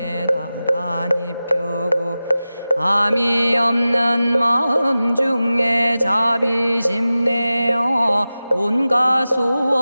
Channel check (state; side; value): inverted; both; correlation -0.95